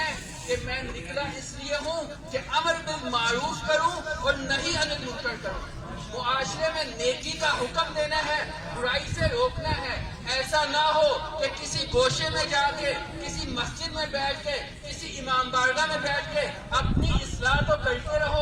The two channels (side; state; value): both; identical; correlation 1.00